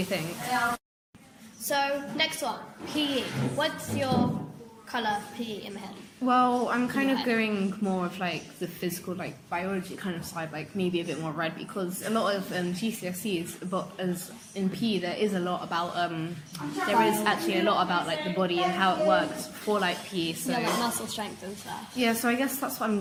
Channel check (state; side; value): identical; both; correlation 1.00